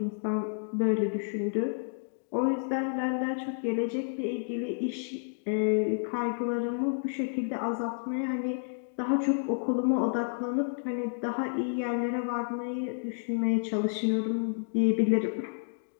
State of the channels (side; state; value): right; silent; digital silence